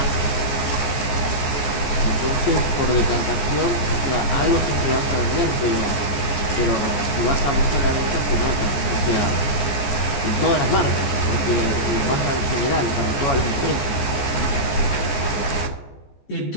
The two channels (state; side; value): late; right; 14 ms